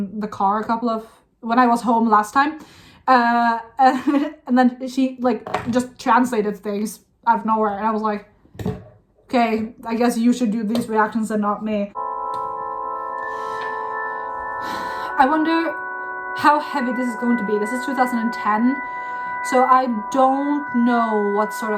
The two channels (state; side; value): identical; both; correlation 1.00